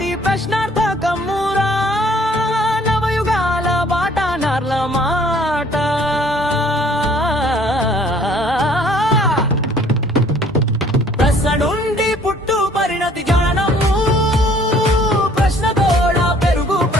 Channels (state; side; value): normal; both; correlation 0.58